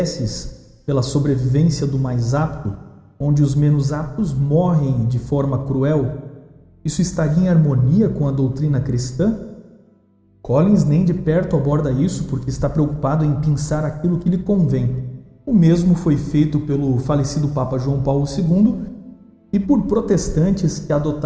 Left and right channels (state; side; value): identical; both; correlation 1.00